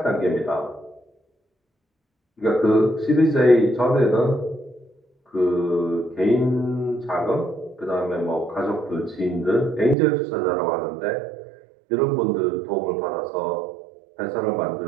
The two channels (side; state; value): left; drops out; at 10.0 s